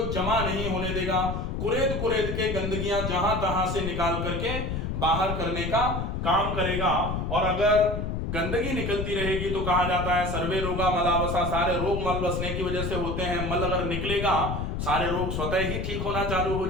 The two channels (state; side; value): noise; left; rumble, 3 dB below the sound